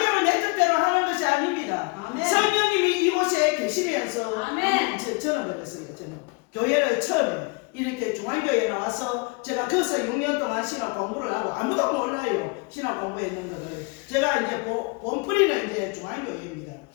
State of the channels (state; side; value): quieter; right; 29.6 dB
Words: 내 뜻대로 하는 것이 아닙니다. 아멘. 성령님이 이곳에 계시면서 아멘. 저는 그랬어요. 저는 교회를 처음에 이렇게 중앙교회에 나와서 제가 거기서 6년 동안 신학 공부를 하고 아무도 몰라요. 신학 공부했는 것을 제가 이제 본뿌리는 이제 중앙교회입니다.